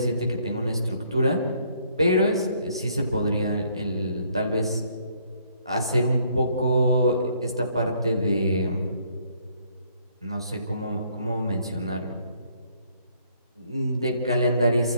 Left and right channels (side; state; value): both; inverted; correlation -0.66